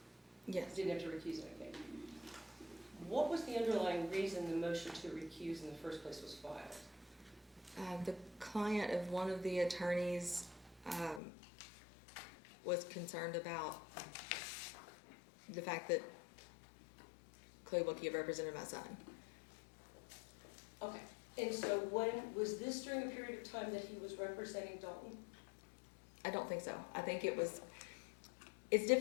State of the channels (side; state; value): right; drops out; at 11.2 s